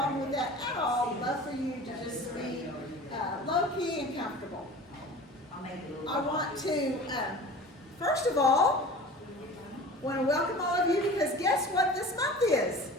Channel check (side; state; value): both; normal; correlation 0.39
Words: with that at all. Love for you to just be low-key and comfortable. I want to, first of all, want to welcome all of you because guess what this month is?